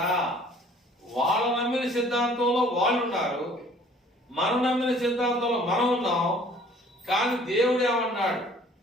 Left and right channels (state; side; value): normal; both; correlation 0.54